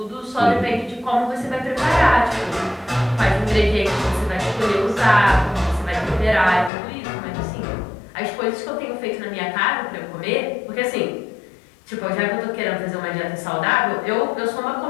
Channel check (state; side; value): drops out; right; at 6.7 s